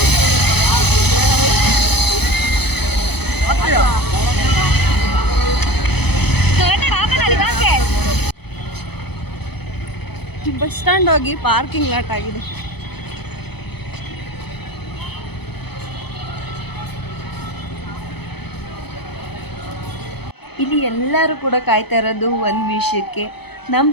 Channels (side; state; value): right; late; 0.97 ms